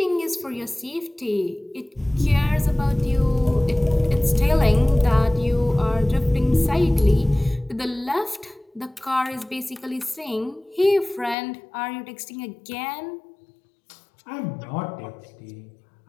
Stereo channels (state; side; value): drops out; right; at 11.4 s